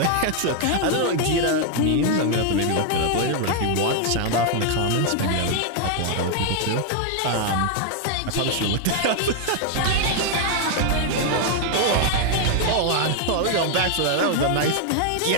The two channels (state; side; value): different; both; correlation 0.00